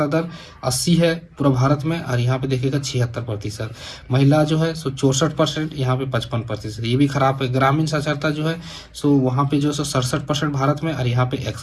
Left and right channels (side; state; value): both; identical; correlation 1.00